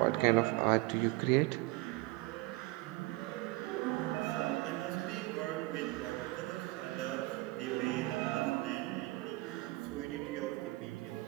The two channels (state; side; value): quieter; left; 20.8 dB